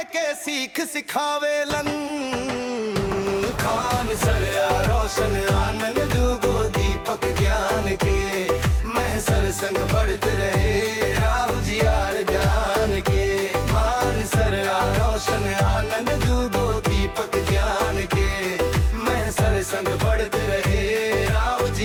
के सीख सिखावेलन। खान सर रोशन आनंद गो दीपक ज्ञान के महसर संग बढ़ते रहे राहु जी यार जान के। खान सर रोशन आनंद गो दीपक ज्ञान के महसर संग बढ़ते रहे राहु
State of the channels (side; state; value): both; identical; correlation 1.00